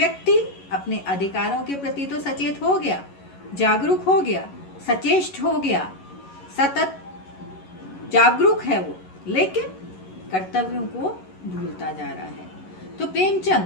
अपने अधिकारों के प्रति तो सचेत हो गया, जागरूक हो गया, सचेष्ट हो गया, सतत जागरूक है वो, लेकिन कर्तव्यों को भूलता जा रहा है। तो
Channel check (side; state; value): right; late; 11 ms